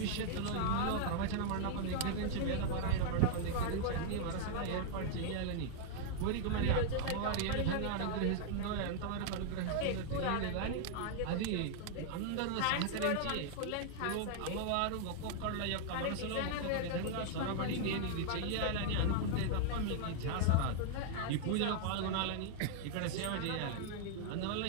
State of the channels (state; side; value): different; both; correlation -0.01